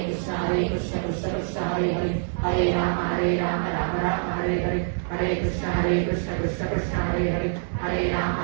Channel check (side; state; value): left; silent; digital silence